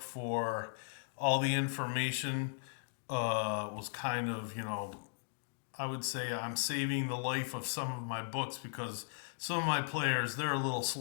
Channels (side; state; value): right; silent; digital silence